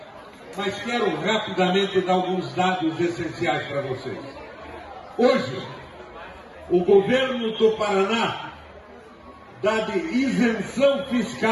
Mas quero rapidamente dar alguns dados essenciais para vocês. Hoje, o governo do Paraná dá de isenção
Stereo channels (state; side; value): identical; both; correlation 1.00